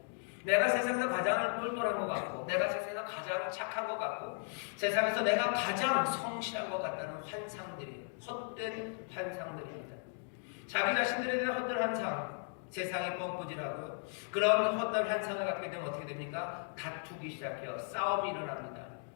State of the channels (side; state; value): right; silent; 54 dB below the other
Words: 내가 세상에서 가장 똘똘한 것 같고 내가 세상에서 가장 착한 것 같고 세상에서 내가 가장 성실한 것 같다는 환상들이 헛된 환상들입니다. 자기 자신들에 대한 헛된 환상 세상이 뻔꾸질하고요. 그런 헛된 환상을 갖게 되면 어떻게 됩니까? 다투기 시작해요. 싸움이 일어납니다.